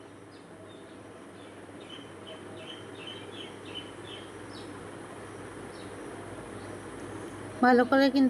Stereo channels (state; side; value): identical; both; correlation 1.00